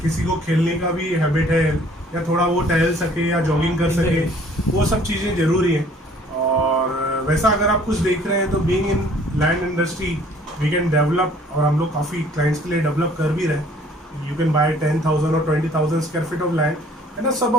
किसी को खेलने का भी हैबिट है या थोड़ा वो टहल सके या जॉगिंग कर सके, वो सब चीज़ें ज़रूरी हैं। और वैसा अगर आप कुछ देख रहे हैं तो being in land industry we can develop, और हम लोग काफ़ी क्लाइंट्स के लिए डेवलप कर भी रहे हैं। यू कैन बाय 10,000 और 20,000 square feet of land and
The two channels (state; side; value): normal; both; correlation 0.56